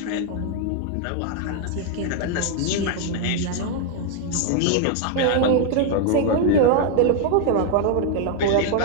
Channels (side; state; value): both; different; correlation 0.00